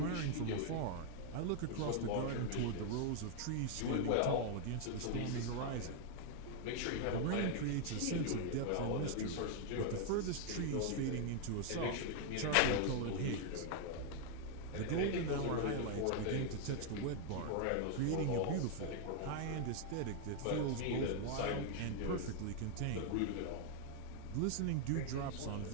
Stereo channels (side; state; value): both; different; correlation 0.00